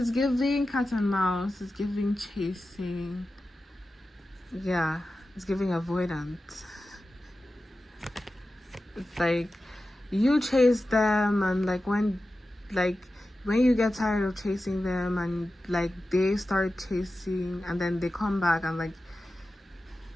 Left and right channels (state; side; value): normal; both; correlation 0.93